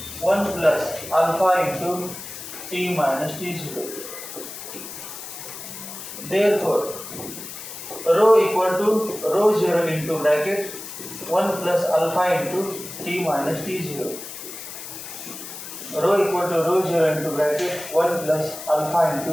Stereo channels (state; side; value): noise; left; hiss, 11 dB below the sound